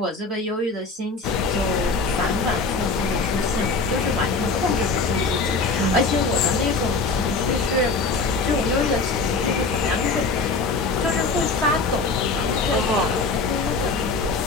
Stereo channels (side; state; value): right; quieter; 4.0 dB